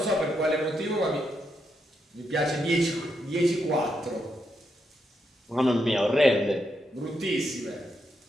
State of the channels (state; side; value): normal; both; correlation 0.81